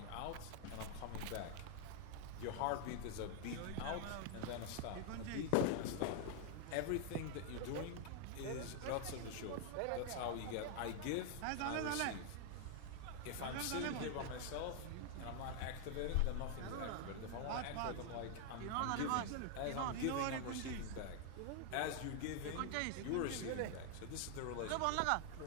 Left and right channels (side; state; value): both; different; correlation 0.00